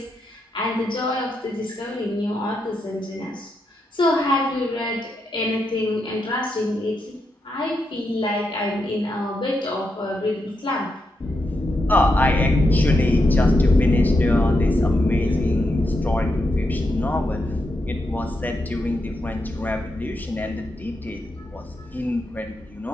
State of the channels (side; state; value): both; normal; correlation 0.84